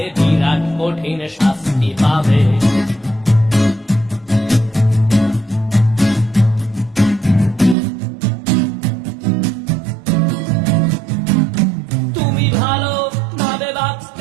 বিরাট কঠিন শাস্তি পাবে। তুমি ভালো ভাবে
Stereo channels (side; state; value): left; drops out; at 7.8 s